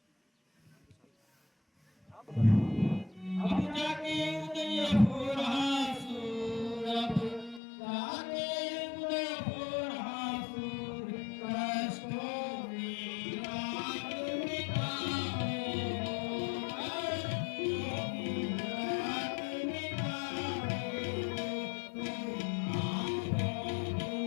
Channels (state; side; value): drops out; right; at 7.6 s